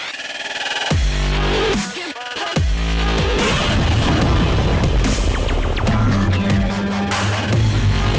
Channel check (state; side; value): identical; both; correlation 1.00